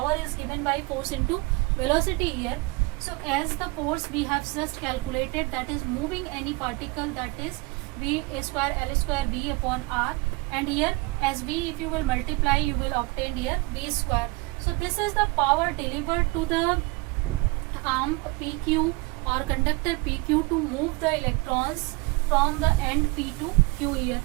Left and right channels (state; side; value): quieter; left; 25.3 dB